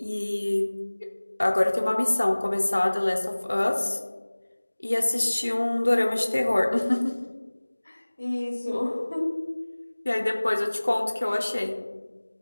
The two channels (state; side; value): inverted; both; correlation -1.00